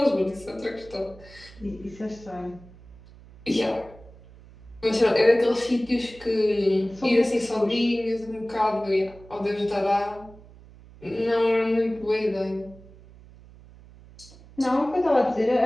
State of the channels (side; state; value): right; noise; hum, 22 dB below the sound